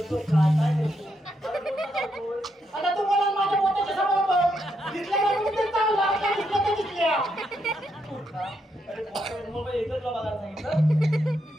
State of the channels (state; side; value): normal; both; correlation 0.79